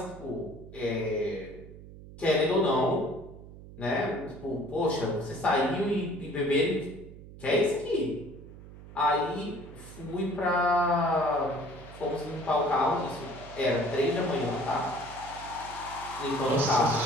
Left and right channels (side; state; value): right; noise; hum, 16 dB below the sound